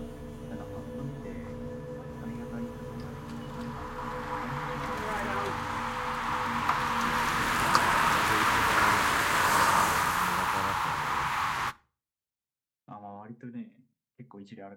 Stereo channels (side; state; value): both; identical; correlation 1.00